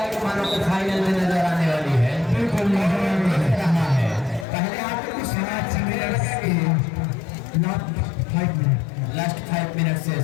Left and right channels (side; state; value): right; drops out; at 4.5 s